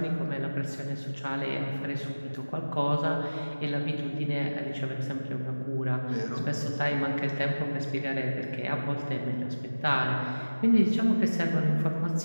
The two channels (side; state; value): both; inverted; correlation -1.00